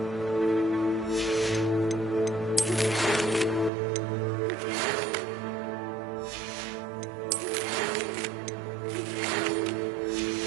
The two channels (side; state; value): left; drops out; at 3.7 s